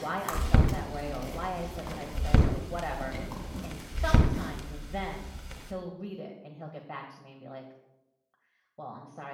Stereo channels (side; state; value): both; identical; correlation 1.00